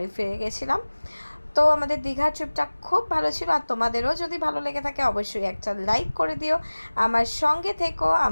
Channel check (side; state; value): both; inverted; correlation -1.00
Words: ফিরে গেছিলাম। তো আমাদের দীঘা ট্রিপটা খুব ভালো ছিল। আর তোমাদেরও যদি ভালো লেগে থাকে অবশ্যই একটা লাইক করে দিও, আমার সঙ্গে থেকো,